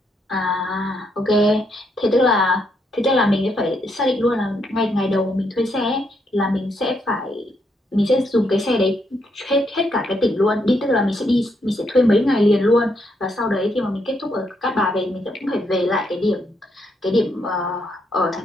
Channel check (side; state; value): both; normal; correlation 0.77